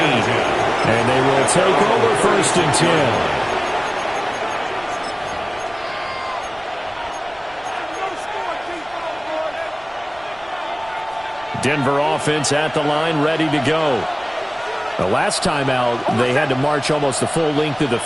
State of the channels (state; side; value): noise; right; rumble, 25 dB below the sound